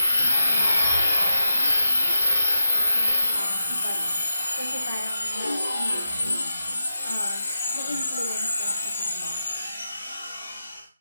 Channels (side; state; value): both; inverted; correlation -0.87